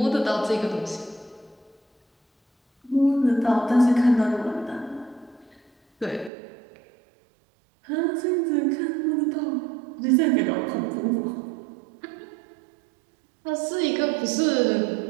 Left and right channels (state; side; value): drops out; left; at 6.3 s